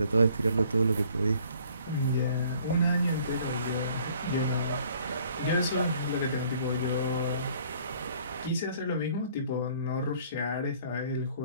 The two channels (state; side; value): inverted; both; correlation -0.58